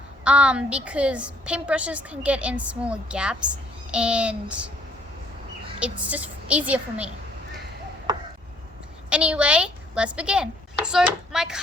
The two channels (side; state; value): both; normal; correlation 0.64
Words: because paintbrushes can get in smaller gaps and it's just easier for me. Anyway, let's begin. So my